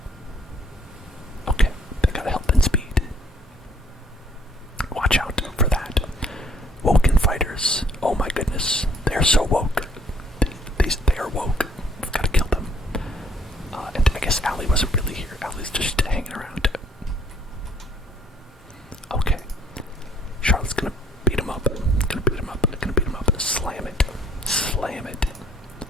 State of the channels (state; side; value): normal; both; correlation 0.62